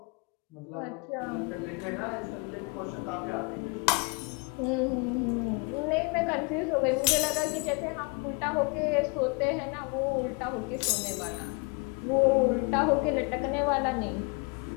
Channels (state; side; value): quieter; right; 31.3 dB